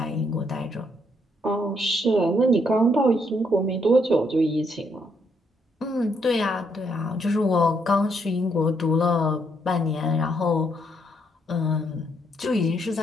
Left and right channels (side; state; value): both; normal; correlation 0.74